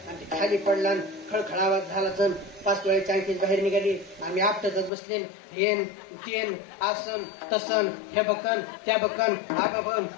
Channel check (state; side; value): drops out; right; at 4.9 s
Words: ते खाली पडला. खळखळावा झाला. 5 तोळ्याची अंगठी बाहेर निघाली. आम्ही आपटतच बसले. हेन तेन आसन तसन हे बकन त्या बकन आबाबम